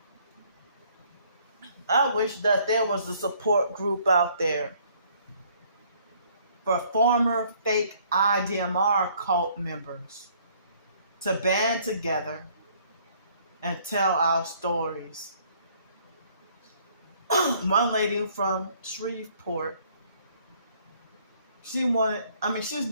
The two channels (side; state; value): both; inverted; correlation -0.62